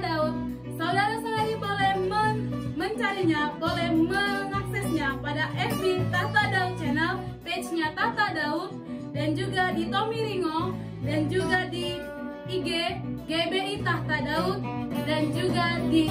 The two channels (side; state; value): both; identical; correlation 1.00